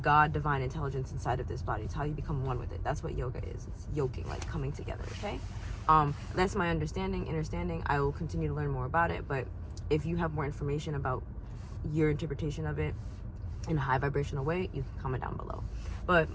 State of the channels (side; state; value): both; identical; correlation 1.00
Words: divine intelligence inside of this body. It's how you become one with it. That's what yoga is. It's yoking, like coming together. Okay, that's my understanding. I will continue to learn more about it, but if you have more information about your interpretation of it in a high vibrational way, you can comment down below. But